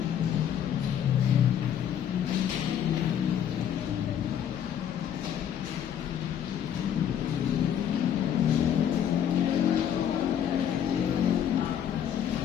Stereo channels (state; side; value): quieter; right; 9.4 dB